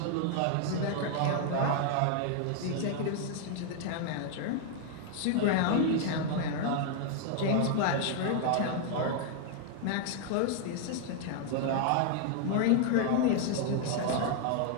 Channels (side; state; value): both; different; correlation 0.00